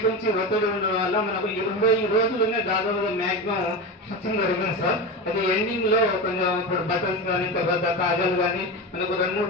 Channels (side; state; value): both; normal; correlation 0.21